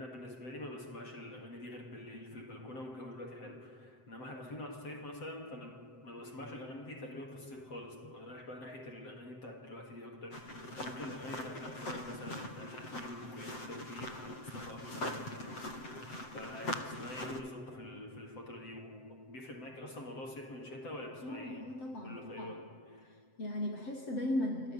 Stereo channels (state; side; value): late; right; 7.8 ms